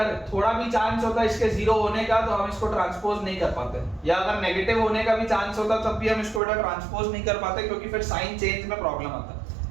थोड़ा भी चांस होता इसके जीरो होने का तो हम इसको ट्रांसपोज नहीं कर पाते, या अगर नेगेटिव होने का भी चांस होता तब भी हम इसको बेटा ट्रांसपोज नहीं कर पाते क्योंकि फिर साइन चेंज में प्रॉब्लम आता।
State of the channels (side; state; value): left; drops out; at 6.4 s